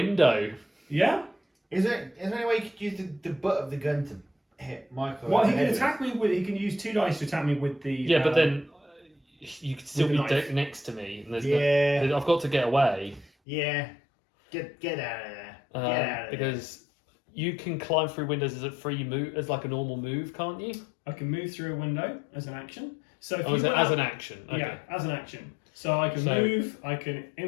Yeah? Is there any way you could use the butt of the gun to hit Michael? Well, he can attack me with. He can use 2 dice to attack me with the. Yeah, but then you could still with be the knife. next to me. And I've got to get away. Yeah. Get out of there. Get out of there. Because you can climb through windows as a free move, as like a normal move, can't you? I can move through a window as an action. So if As an action. Okay. Yeah, as an action. So I can move, I can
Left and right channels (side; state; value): right; drops out; at 13.3 s